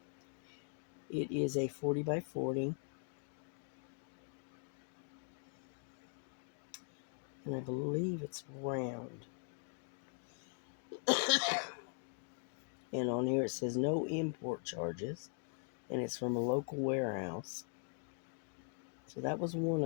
it is a 40 by 40. And I believe it's round. And on here it says no import charges. And it's from a local warehouse. So that was one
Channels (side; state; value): right; silent; 50 dB below the other